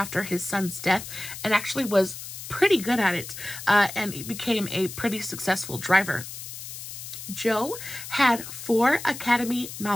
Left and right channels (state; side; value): noise; left; hiss, 10 dB below the sound